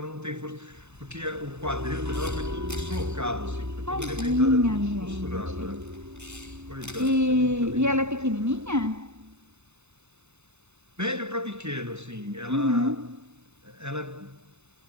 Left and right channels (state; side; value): late; left; 0.82 ms